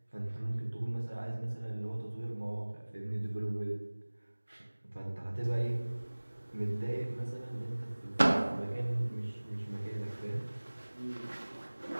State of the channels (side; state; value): both; inverted; correlation -1.00